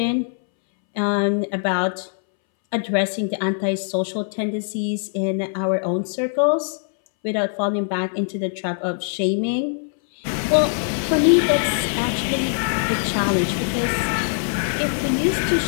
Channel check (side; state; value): right; silent; 63 dB below the other